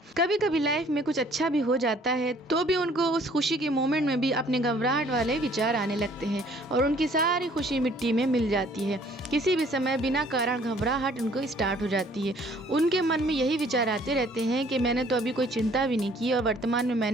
कभी कभी लाइफ में कुछ अच्छा भी हो जाता है तो भी उनको उस खुशी के मोमेंट में भी अपने घबराहट वाले विचार आने लगते हैं और उनकी सारी खुशी मिट्टी में मिल जाती है। किसी भी समय बिना कारण घबराहट उनको स्टार्ट हो जाती है। उनके मन में यही विचार आते रहते हैं कि मैंने तो अभी कोई चिंता भी नहीं की और वर्तमान में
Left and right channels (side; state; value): both; normal; correlation 0.58